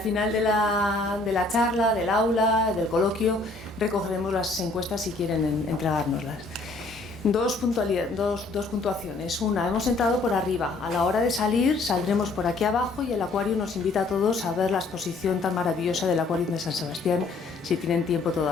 de la charla, del aula, del coloquio, recogeremos las encuestas si quieren entregárnoslas. Dos puntuaciones. Una, hemos entrado por arriba. A la hora de salir, saldremos por aquí abajo y el acuario nos invita a todos a ver la exposición tan maravillosa del acuario de San Sebastián, si tienen tiempo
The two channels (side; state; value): right; quieter; 3.4 dB